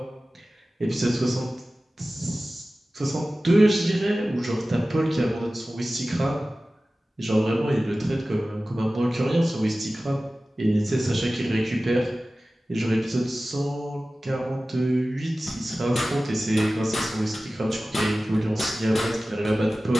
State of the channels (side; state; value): both; normal; correlation 0.96